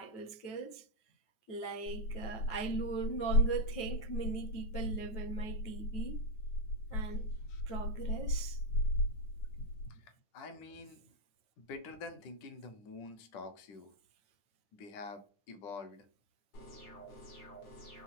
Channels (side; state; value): right; late; 9.2 ms